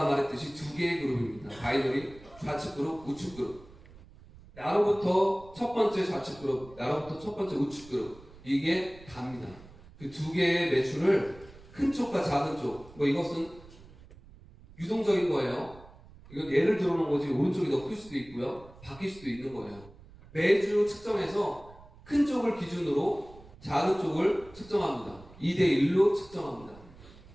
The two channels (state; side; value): noise; right; rumble, 21 dB below the sound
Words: 말했듯이 2개의 그룹입니다. 바이너리, 좌측 그룹, 우측 그룹. 나로부터 첫 번째 좌측 그룹, 나로부터 첫 번째 우측 그룹. 이게 다입니다. 그 두 개의 매출을 큰 쪽과 작은 쪽, 뭐 이것은 유동적인 거예요. 이건 예를 들어 놓은 거지 오른쪽이 더 클 수도 있고요. 바뀔 수도 있는 거예요. 매주 측정해서 큰 쪽을 기준으로 작은 쪽을 측정합니다. 2대1로 측정합니다.